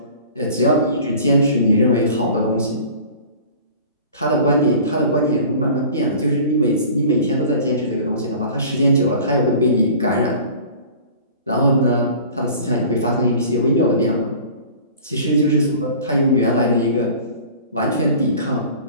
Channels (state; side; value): inverted; both; correlation -0.44